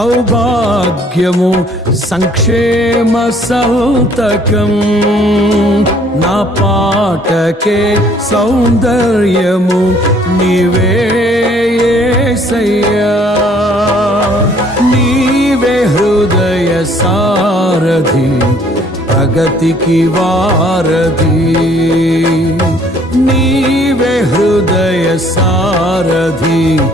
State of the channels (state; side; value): normal; both; correlation 0.60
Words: సంక్షేమ సంతకం నా పాటకే సౌందర్యము నీవే యేసయ్యా నీవే హృదయ సారథి ప్రగతికి వారధి నీవే హృదయ సారథి